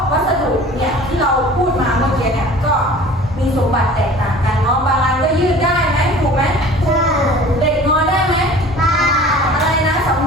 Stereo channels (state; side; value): normal; both; correlation 0.44